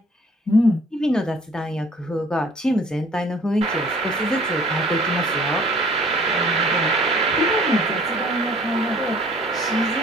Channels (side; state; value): both; normal; correlation 0.53